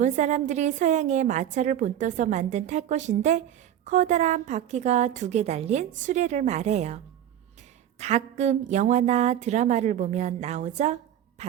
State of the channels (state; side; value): quieter; left; 10.9 dB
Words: 사람들이 서양의 마차를 본떠서 만든 탈 것인데 커다란 바퀴가 2개 달린 수레를 말해요. 가끔 영화나 드라마를 보면 나오죠?